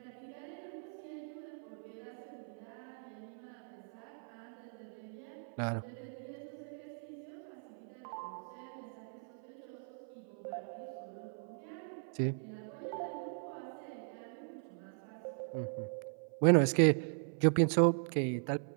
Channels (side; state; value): left; silent; 52 dB below the other